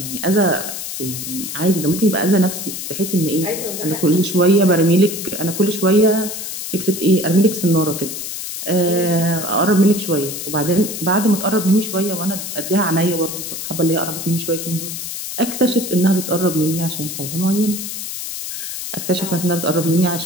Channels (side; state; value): left; noise; hiss, 6 dB below the sound